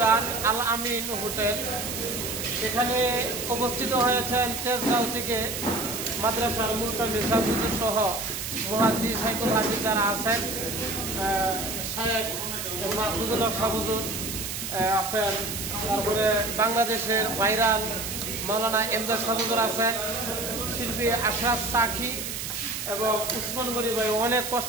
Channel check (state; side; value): noise; right; hiss, 5 dB below the sound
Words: আল আমিন হোটেল। এখানে অবস্থিত হয়েছেন তেজগাঁও থেকে মাদ্রাসার মুলতামি সাহুজুর সহ মুহাদ্দিস সাইকুল হাফিজ যারা আছেন, শায়েখ মাহফুজুল হক সাহুজুর আছেন, তারপরে বাংলাদেশের বাইরান মৌলানা এমদাদ সাহুজুর আছেন, শিল্পী আশরাফ সাকি এবং উসমান গনি ভাই অনেক